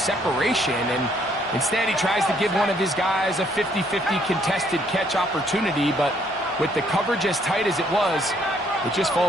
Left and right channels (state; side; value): normal; both; correlation 0.67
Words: And instead, he tries to give one of his guys a 50-50 contested catch opportunity. But with the coverage as tight as it was, it just